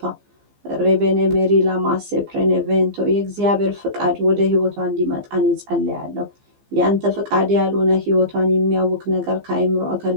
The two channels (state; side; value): late; left; 15 ms